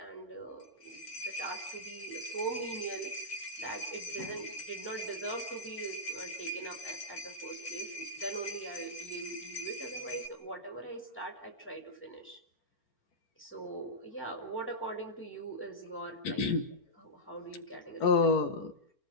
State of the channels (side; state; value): right; late; 4.4 ms